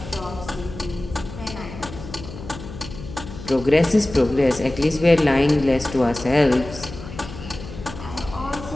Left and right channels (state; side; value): noise; left; hum, 12 dB below the sound